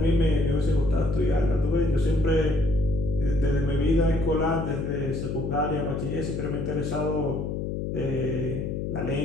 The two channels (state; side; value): noise; left; hum, 2 dB below the sound